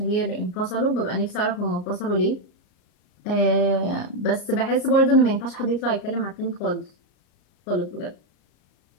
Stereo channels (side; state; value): right; late; 33 ms